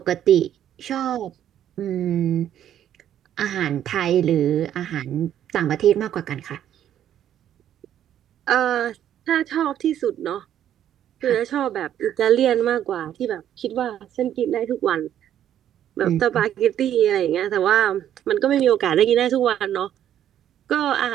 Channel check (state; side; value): quieter; left; 10.7 dB